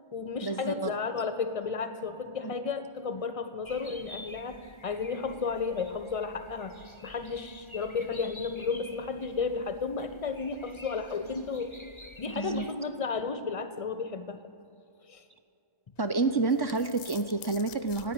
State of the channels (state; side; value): late; right; 1.7 ms